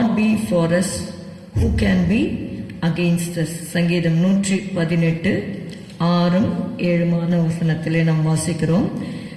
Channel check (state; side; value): identical; both; correlation 1.00